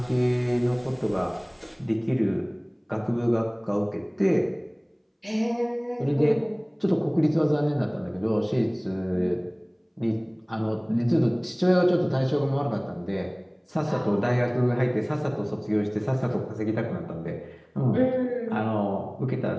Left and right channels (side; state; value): both; identical; correlation 1.00